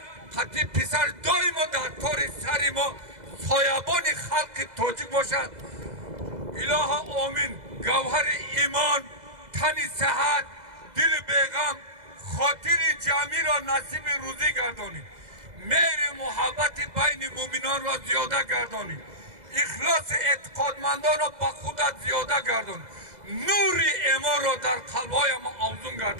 қати писар доимо дар тори сари мо соябони халқи тоҷик бошад. Илоҳа омин. Гавҳари имон, тани сиҳат, дили беғам, хотири ҷамъиро насиби рӯзӣ гардонид. мehri muhabbati bayni mu'minon را زیاده گردانید. اخلاص اعتقادمندان را با خودت زیاده گردان. نور ایمان را در قلب‌های ما افزون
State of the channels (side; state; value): left; late; 2.0 ms